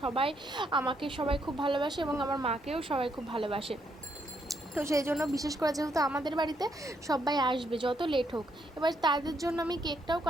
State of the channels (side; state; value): both; normal; correlation 0.75